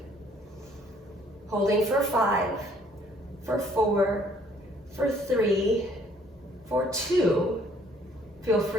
Holding for 5, for 4, for 3, for 2. Feel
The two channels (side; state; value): both; normal; correlation 0.61